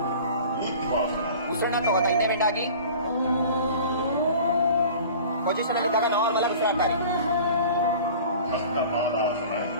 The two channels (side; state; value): both; inverted; correlation -0.42